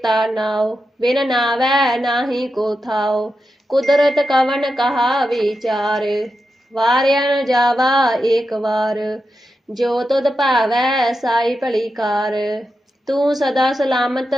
ਨਾਉ, ਬਿਨ ਨਾਵੈ ਨਾਹੀ ਕੋ ਥਾਉ, ਕੁਦਰਤ ਕਵਨ ਕਹਾ ਵਿਚਾਰ, ਵਾਰਿਆ ਨ ਜਾਵਾ ਏਕ ਵਾਰ, ਜੋ ਤੁਧ ਭਾਵੈ ਸਾਈ ਭਲੀ ਕਾਰ, ਤੂੰ ਸਦਾ ਸਲਾਮਤ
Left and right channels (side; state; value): both; normal; correlation 0.88